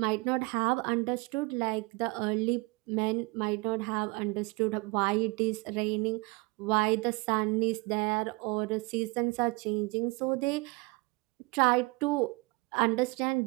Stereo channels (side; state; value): left; quieter; 26.5 dB